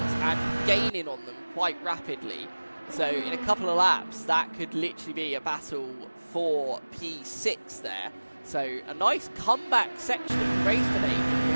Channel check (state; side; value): inverted; both; correlation -1.00